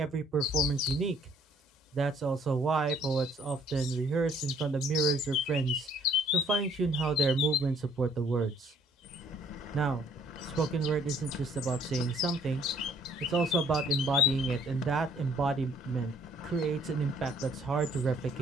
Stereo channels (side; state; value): both; normal; correlation 0.61